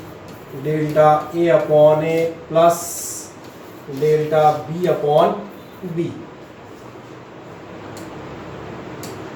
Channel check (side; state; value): both; identical; correlation 1.00